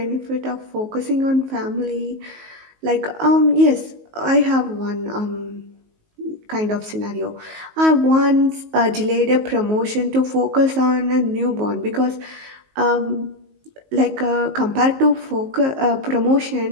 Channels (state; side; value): late; left; 19 ms